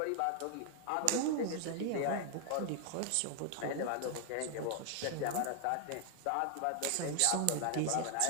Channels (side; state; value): both; different; correlation 0.00